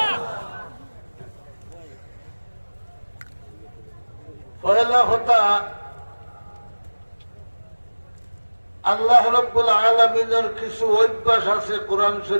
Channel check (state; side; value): inverted; both; correlation -1.00